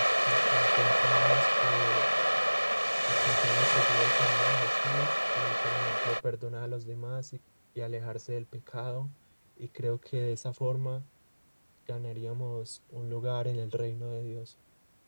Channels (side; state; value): both; inverted; correlation -1.00